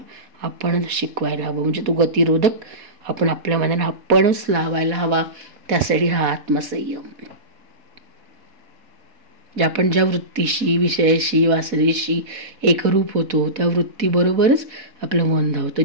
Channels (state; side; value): late; left; 4.1 ms